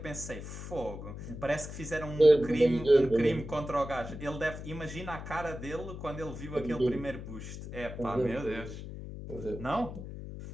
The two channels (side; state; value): left; noise; hum, 10 dB below the sound